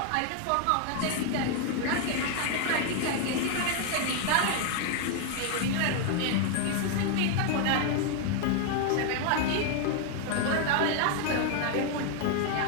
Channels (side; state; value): both; different; correlation 0.00